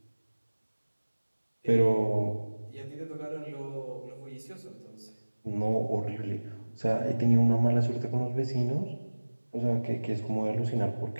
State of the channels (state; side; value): inverted; both; correlation -1.00